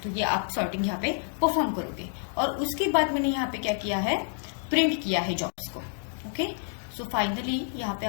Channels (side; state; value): right; silent; 59 dB below the other